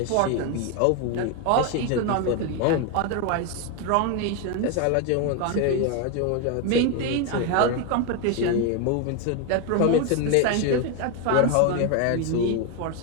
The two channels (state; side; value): different; both; correlation 0.01